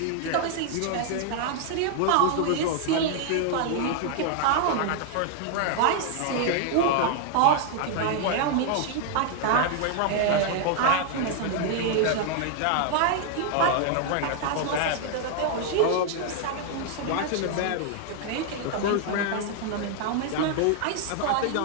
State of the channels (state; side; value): different; both; correlation 0.00